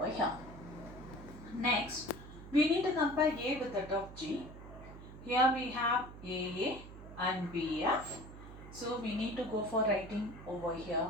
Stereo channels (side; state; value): right; noise; hum, 14 dB below the sound